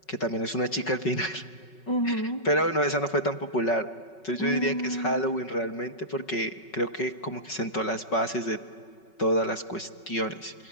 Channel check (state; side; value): late; right; 5.3 ms